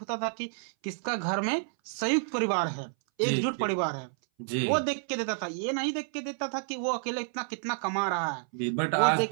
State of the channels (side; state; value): left; silent; 58 dB below the other